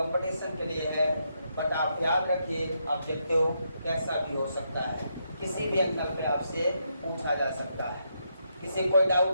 के लिए है। बट आप याद रखिए ऑब्जेक्टिव कैसा भी हो सकता है, किसी भी एंगल पे आपसे पूछा जा सकता है। किसी कोई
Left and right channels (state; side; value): inverted; both; correlation -0.79